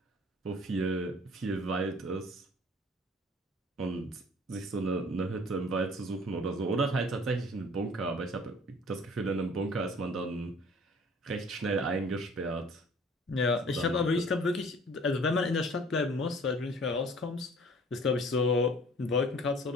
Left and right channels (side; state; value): both; normal; correlation 0.51